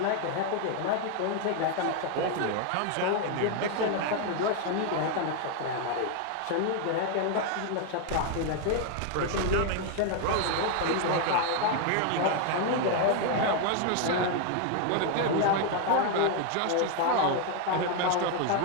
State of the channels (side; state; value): both; different; correlation 0.01